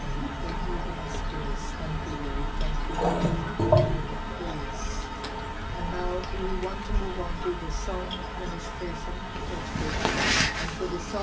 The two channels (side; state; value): both; identical; correlation 1.00